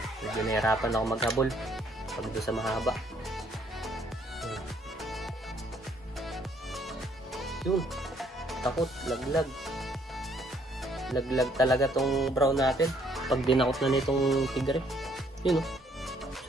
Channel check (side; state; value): both; normal; correlation 0.66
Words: Medyo nahirapan ako maghabol pag doon sa mahaba. Yun. Takot. Laglag. Laglag talaga tong brown natin. Pag dinakot na nitong tigre. Yun, oh.